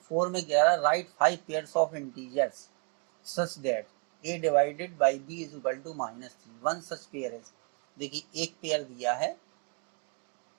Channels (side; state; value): left; quieter; 36.3 dB